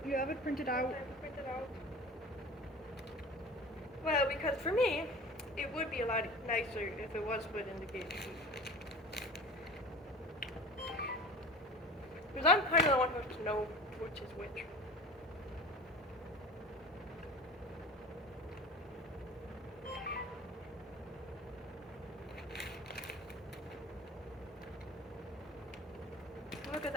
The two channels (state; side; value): normal; both; correlation 0.38